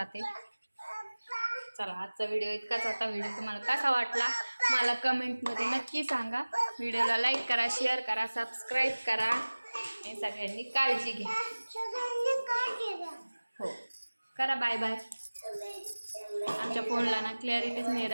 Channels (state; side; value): inverted; both; correlation -1.00